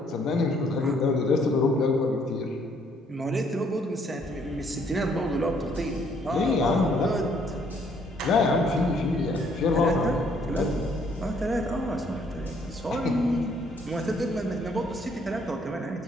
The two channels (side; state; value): both; normal; correlation 0.66